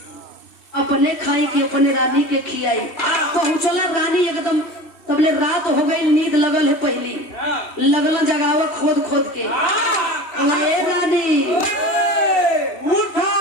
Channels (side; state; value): right; late; 2.8 ms